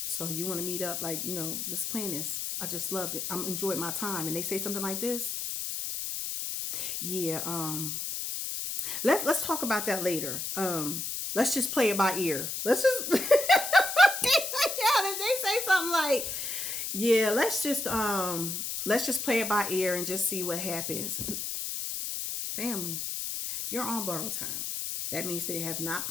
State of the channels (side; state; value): left; noise; hiss, 3 dB below the sound